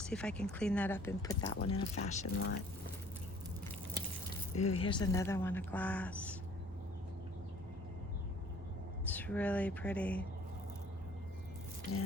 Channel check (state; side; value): normal; both; correlation 0.54